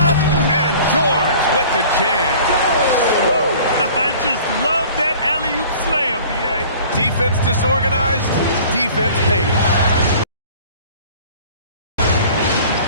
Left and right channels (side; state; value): both; inverted; correlation -0.47